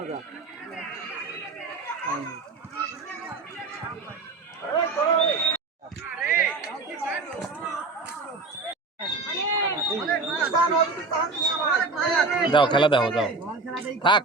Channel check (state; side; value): quieter; left; 3.8 dB